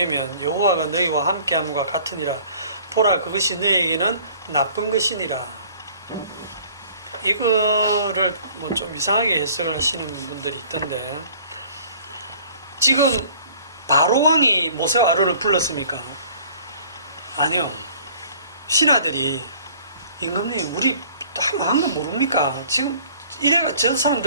여호와가 너희와 함께함과 같으니라. 보라 그것이 너희에게는 나쁜 것이니라. 이거를 뭐 좀 이상하게 해석을 하시는 분들이 있던데, 지금 바로왕이 모세와 아론을 불렀습니까? 아니요. 신하들이 임금님 우리 한 거 모릅니까? 지금 이래가 저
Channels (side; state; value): both; inverted; correlation -0.52